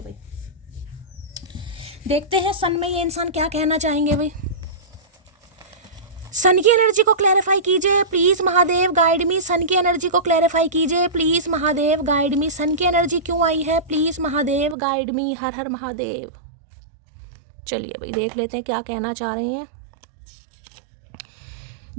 भाई देखते हैं सन में ये इंसान क्या कहना चाहेंगे भाई। सन की एनर्जी को क्लैरिफाई कीजिए प्लीज महादेव गाइड मी, सन की एनर्जी को क्लैरिफाई कीजिए प्लीज महादेव गाइड मी। सन की एनर्जी क्यों आई है, प्लीज महादेव गाइड मी। हर हर महादेव। चलिए भाई देख लेते हैं क्या कहना चाह रहे हैं।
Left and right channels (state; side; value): drops out; left; at 14.8 s